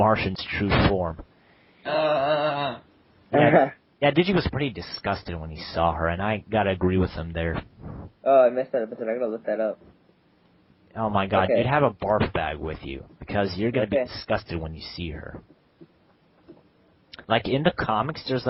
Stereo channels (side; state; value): both; identical; correlation 1.00